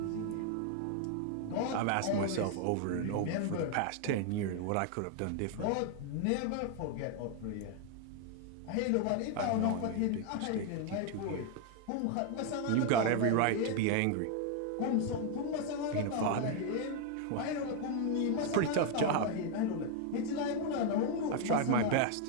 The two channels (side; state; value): both; different; correlation 0.01